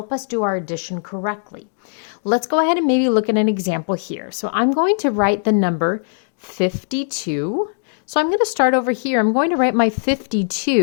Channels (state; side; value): silent; right; digital silence